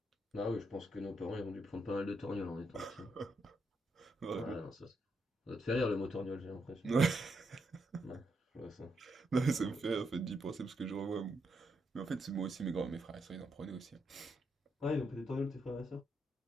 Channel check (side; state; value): both; normal; correlation 0.80